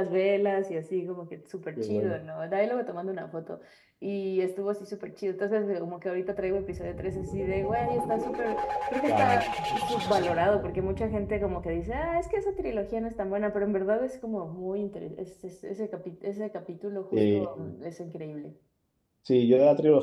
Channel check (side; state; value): both; identical; correlation 1.00